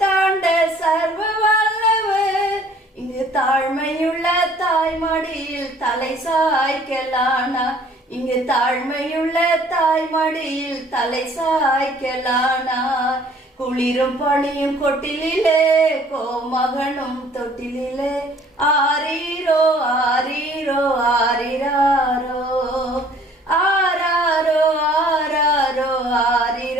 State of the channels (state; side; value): normal; both; correlation 0.56